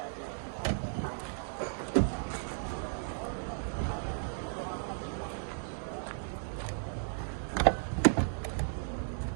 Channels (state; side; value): silent; left; digital silence